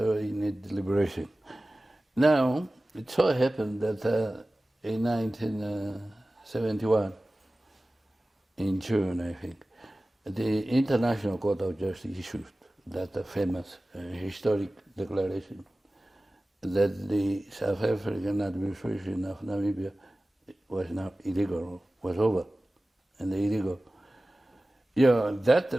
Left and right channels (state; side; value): normal; both; correlation 0.97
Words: need liberation. Now, it so happened that in 1971, in June, I think, the International Court of Justice issued that famous historic declaration that the South African administration of Namibia was now illegal, was over, and illegal. Yeah,